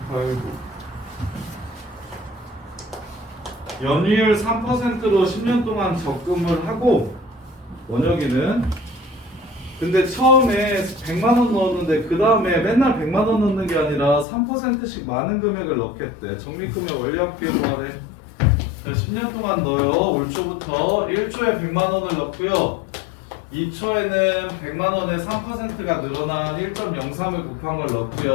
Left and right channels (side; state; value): right; drops out; at 14.2 s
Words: 8, 9. 연이율 3%로 10년 동안 적금을 하고 원혁이는 근데 처음에 100만 원 넣었는데 그 다음에 맨날 100만 원 넣는 게 아니라 3%씩 많은 금액을 넣겠대. 적립금액 원리합계로 하래. 10년 동안 넣어요. 올 초부터 1초에 100만 원을 넣고요. 2초에는 100만 원에 3%가 늘어난 1.03을 곱한 걸